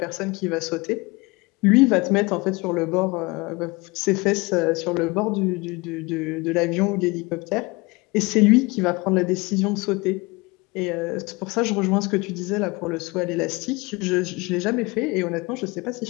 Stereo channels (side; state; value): right; quieter; 25.1 dB